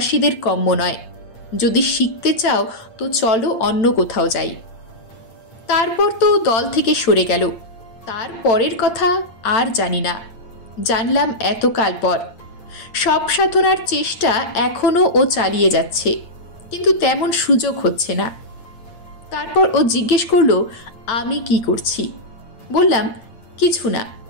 কম্য নয়, যদি শিখতে চাও তো চলো অন্য কোথাও যাই। তারপর তো দল থেকে সরে গেল। তার পরের কথা আর জানি না, জানলাম এতকাল পর। সব সাধনার চেষ্টা এখনও ও চালিয়ে যাচ্ছে, কিন্তু তেমন সুযোগ হচ্ছে না। তারপর ও জিজ্ঞেস করলো আমি কি করছি। বললাম কিছু না।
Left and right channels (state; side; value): late; right; 8.8 ms